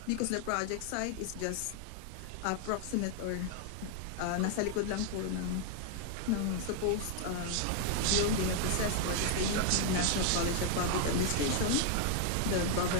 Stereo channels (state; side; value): different; both; correlation 0.00